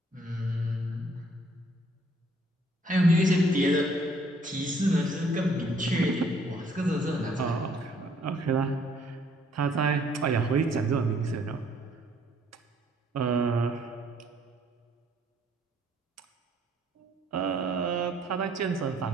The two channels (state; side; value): normal; both; correlation 0.64